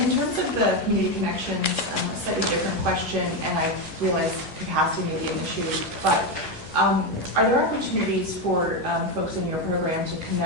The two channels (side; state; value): right; late; 10 ms